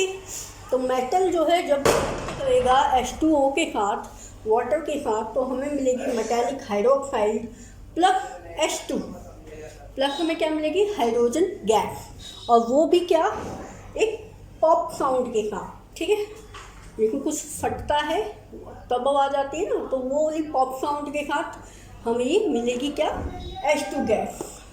तो मेटल जो है जब करेगा H2O के साथ, वाटर के साथ, तो हमें मिलेगी metallic hydroxide plus H2 plus हमें क्या मिलेगी, हाइड्रोजन गैस, और वो भी क्या, एक पॉप साउंड के साथ। ठीक है, लेकिन कुछ फटता है तब आवाज़ आती है ना, तो वो पॉप साउंड के साथ हमें ये मिलेगी क्या, H2 गैस।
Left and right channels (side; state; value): both; identical; correlation 1.00